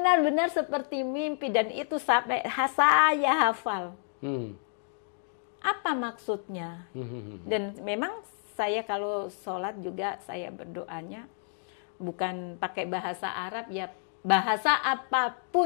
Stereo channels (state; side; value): silent; right; digital silence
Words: seperti mimpi, dan itu sampai saya hafal. Apa maksudnya? Dan memang saya kalau sholat juga saya berdoanya bukan pakai bahasa Arab, ya bahasa